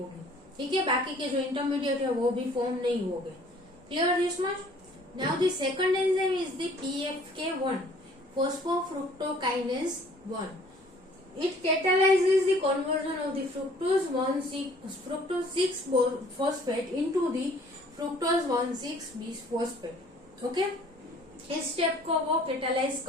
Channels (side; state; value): both; normal; correlation 0.55